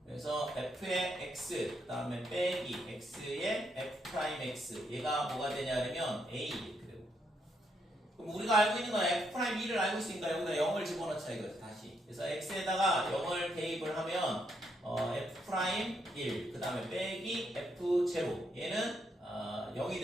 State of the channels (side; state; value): both; normal; correlation 0.77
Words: 그래서 f의 x, 그 다음에 빼기 x의 f'x, 얘가 뭐가 되냐면 a 이렇게 되고, 그럼 우리가 알고 있는 건 f'1을 알고 있으니까 여기다 0을 집어넣자 이거죠 다시. 그래서 x에다가 0을 대입을 하면 f'1, 그 다음에 빼기 f제곱, 얘는 0이